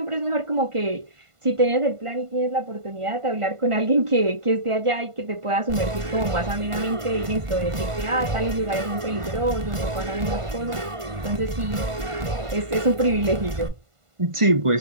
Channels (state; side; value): late; left; 1.5 ms